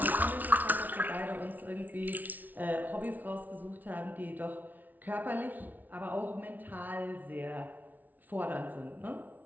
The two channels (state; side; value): late; left; 0.080 ms